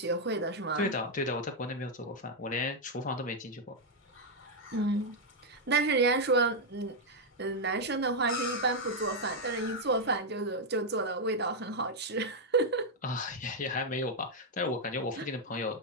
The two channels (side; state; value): both; normal; correlation 0.00